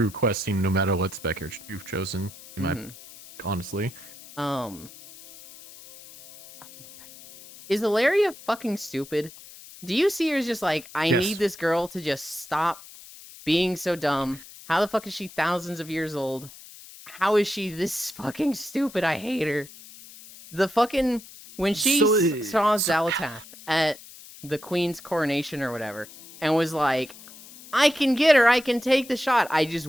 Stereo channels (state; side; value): noise; left; hiss, 18 dB below the sound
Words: questing no matter what spec you've chosen. Honestly. Oh my god. Is Ilaria fucking stupid? Do you see her as just like, I Yes. need this girl to just stop being so dumb? How the fuck is she thousands of years old? How is she this fucking stupid? I hate her. The fucking... When she saw Xalatath at the Queen's coronation or whatever, and was like, I can get her, I can take the shot. I just